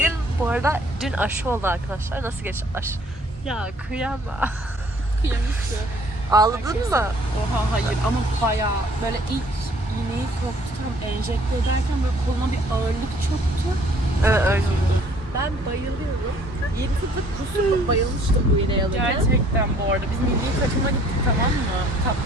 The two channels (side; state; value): both; normal; correlation 0.58